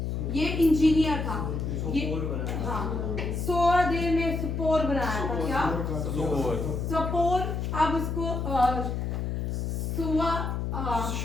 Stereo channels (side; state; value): left; noise; hum, 2 dB below the sound